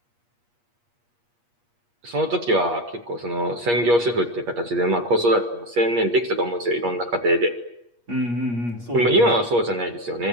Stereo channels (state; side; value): late; left; 8.4 ms